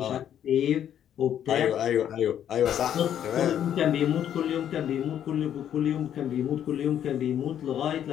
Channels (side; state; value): right; quieter; 10.0 dB